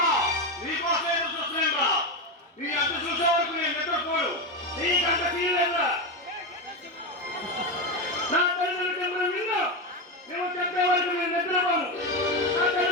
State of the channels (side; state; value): both; normal; correlation 0.13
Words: నీకోసం చూస్తున్నా నీ అంత చూసే వరకు నేను నిద్రపోడు. నీకంత తీయలేదా? నా తల్లిదండ్రులు చెప్పిన విన్ను నువ్వు చెప్పే వరకు నేను నిద్రపోను. నా